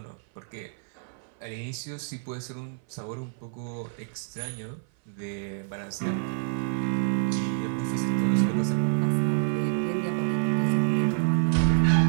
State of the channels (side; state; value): left; silent; 57 dB below the other